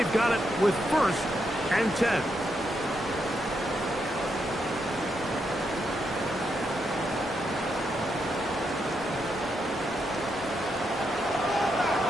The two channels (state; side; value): normal; both; correlation 0.81